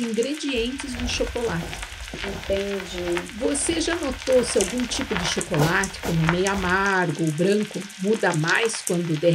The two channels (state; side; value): identical; both; correlation 1.00